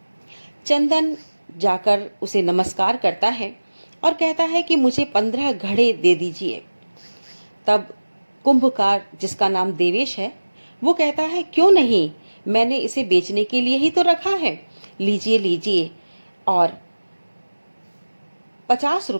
चंदन जाकर उसे नमस्कार करता है और कहता है कि मुझे 15 घड़े दे दीजिए। तब कुंभकार, जिसका नाम देवेश है, वो कहता है क्यों नहीं, मैंने इसे बेचने के लिए ही तो रखा है, लीजिए लीजिए, और 50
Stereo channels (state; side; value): inverted; both; correlation -1.00